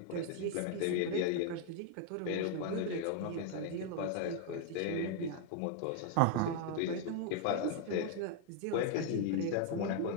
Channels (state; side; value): different; both; correlation 0.00